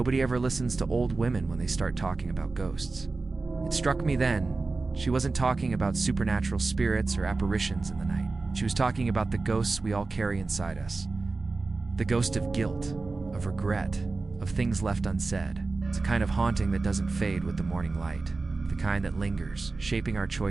ever listens to old women when they start talking about ghosts." It struck me then, she wasn't talking about supernatural spirits or apparitions in the night. She was talking about the ghosts we all carry inside us. The ghost of guilt, of regret, of things left unsaid. It's a kind of haunting that doesn't fade with the morning light. The kind that lingers, shaping our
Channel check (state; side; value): quieter; left; 3.7 dB